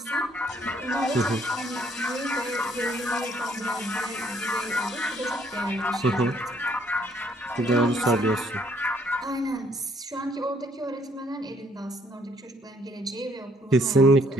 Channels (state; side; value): normal; both; correlation 0.66